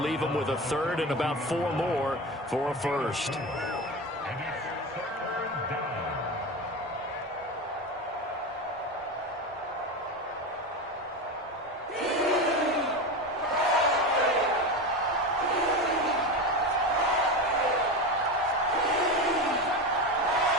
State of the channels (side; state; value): both; normal; correlation 0.22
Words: him with a third and about 4 more for a first.